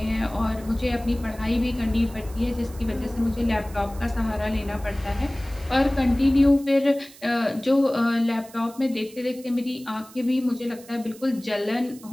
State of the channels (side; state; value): right; noise; hiss, 21 dB below the sound